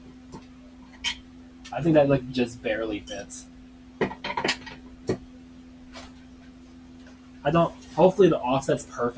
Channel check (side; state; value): both; identical; correlation 1.00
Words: think that like just barely fits. Hopefully the offset's